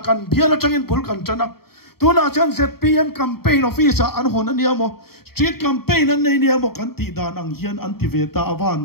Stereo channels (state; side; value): late; right; 0.95 ms